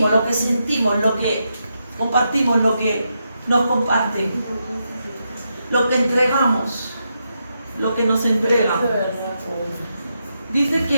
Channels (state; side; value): inverted; both; correlation -0.83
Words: lo que sentimos, lo que compartimos, lo que nos comparten, lo que entregamos, lo que nos entregan. Dice